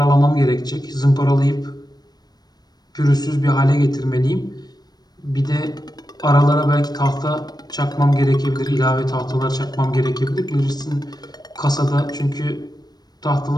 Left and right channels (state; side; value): late; right; 0.19 ms